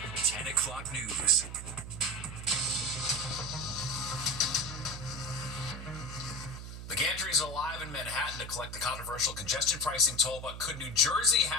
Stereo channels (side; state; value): right; noise; hum, 9 dB below the sound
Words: 10 o'clock news. The Gantrys are live in Manhattan to collect the controversial congestion pricing toll, but could New Jersey